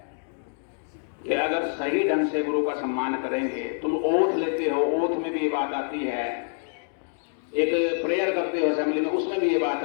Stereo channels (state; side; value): silent; right; digital silence